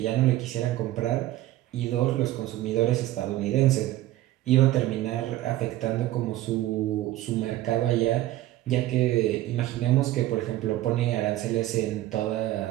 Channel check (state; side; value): quieter; left; 15.1 dB